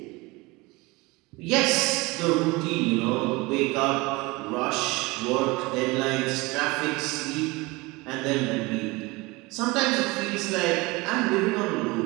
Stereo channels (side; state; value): left; quieter; 23.6 dB